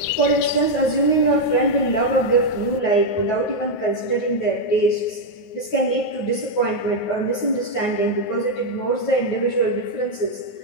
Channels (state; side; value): late; right; 9.4 ms